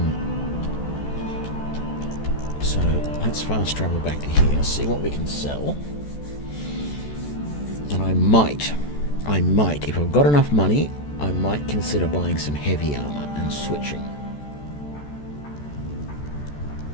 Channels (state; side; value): late; right; 14 ms